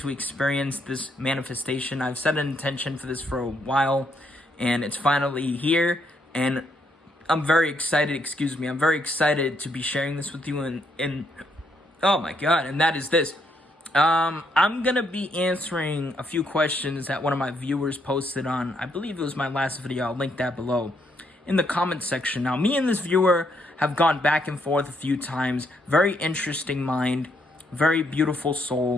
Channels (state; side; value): normal; both; correlation 0.74